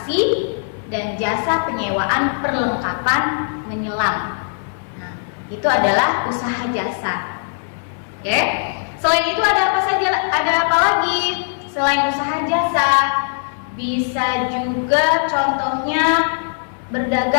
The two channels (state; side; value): silent; right; 60 dB below the other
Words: dan jasa penyewaan perlengkapan menyelam. Nah, itu adalah usaha jasa. Oke. Selain itu ada apa saja? Ada apa lagi selain usaha jasa? Bisa juga contohnya